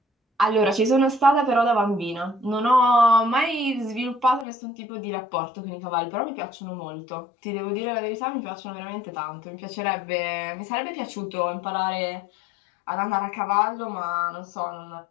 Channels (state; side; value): drops out; right; at 4.5 s